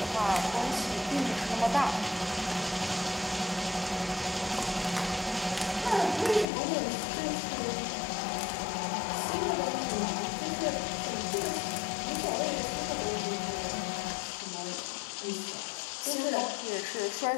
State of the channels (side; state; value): right; drops out; at 6.5 s